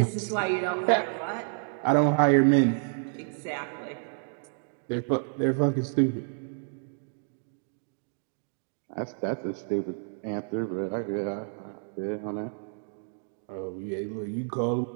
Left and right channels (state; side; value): silent; left; digital silence